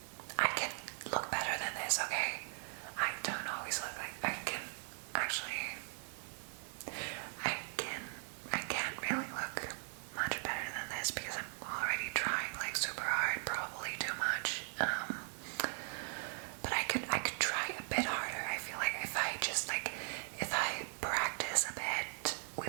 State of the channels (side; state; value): left; silent; 52 dB below the other